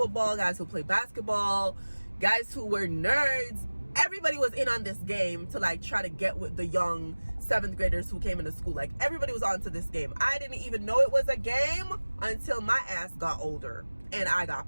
guys who play basketball, guys who were nerds. Everybody was in on this game to like try to get with the young 7th graders who came into school. Like, everybody was onto this game. I didn't even know it was a game until my ass got older and I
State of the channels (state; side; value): inverted; both; correlation -1.00